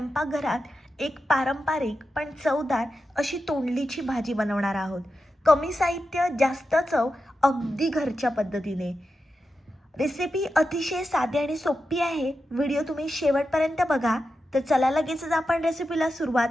एक पारंपरिक पण चवदार अशी तोंडलीची भाजी बनवणार आहोत. कमी साहित्य, जास्त चव, अगदी घरच्या पद्धतीने. रेसिपी अतिशय साधी आणि सोपी आहे. व्हिडिओ तुम्ही शेवटपर्यंत बघा. तर चला लगेचच आपण रेसिपीला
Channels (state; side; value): normal; both; correlation 0.90